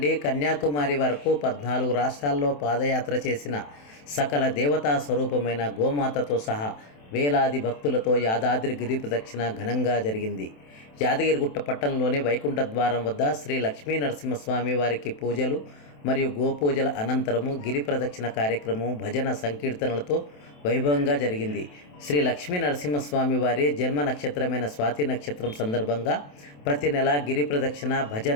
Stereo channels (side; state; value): right; late; 27 ms